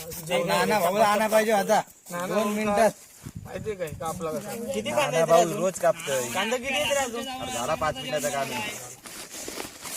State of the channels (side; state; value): both; identical; correlation 1.00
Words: आणा पाहिजे आता 2 मिनिटात. माहिती काय कापला किती कांदा रोज कापतोय. कांदा किती येते रे अजून? झाला 5 मिनिटाचा कांदा.